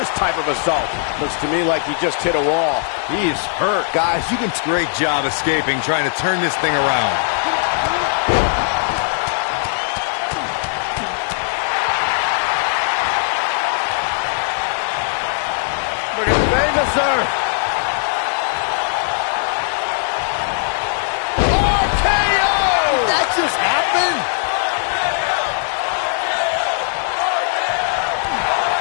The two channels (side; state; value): right; silent; digital silence